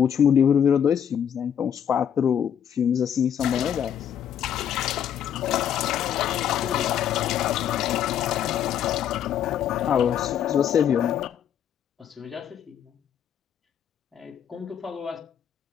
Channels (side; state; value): right; quieter; 9.1 dB